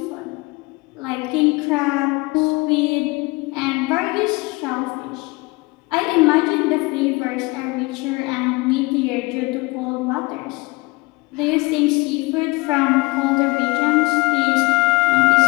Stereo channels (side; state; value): right; quieter; 24.7 dB